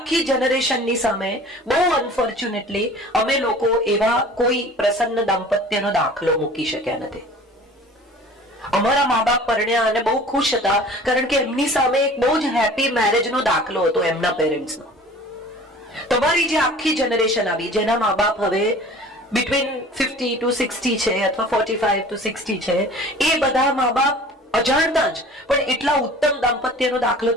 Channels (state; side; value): normal; both; correlation 0.45